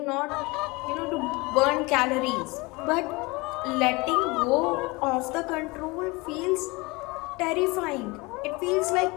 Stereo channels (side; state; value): right; quieter; 24.8 dB